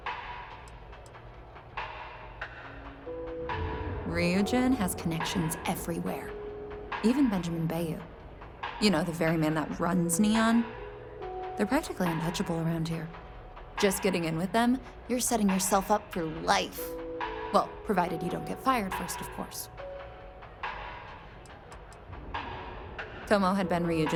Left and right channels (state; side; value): identical; both; correlation 1.00